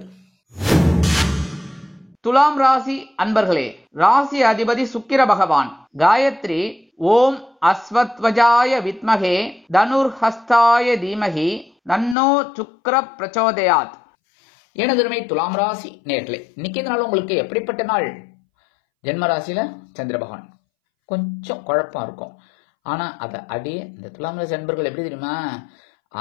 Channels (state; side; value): drops out; right; at 12.2 s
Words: துலாம் ராசி அன்பர்களே, ராசி அதிபதி சுக்கிர பகவான். காயத்ரி ஓம் அஸ்வத்வஜாய வித்மகே தனுர்ஹஸ்தாய தீமகி தன்னோ சுக்ர பிரச்சோதயாத். எனதுமை துலாம் ராசி நேர்களே, இன்னைக்கு நாள் உங்களுக்கு எப்படிப்பட்ட நாள்? ஜென்ம ராசியில சந்திர பகவான் கொஞ்சம் குழப்பம் இருக்கும். ஆனா அதை அடியே இந்த துலாம் ராசி அன்பர்கள் எப்படி தெரியுமா,